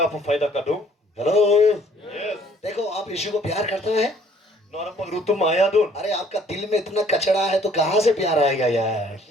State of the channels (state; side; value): normal; both; correlation 0.59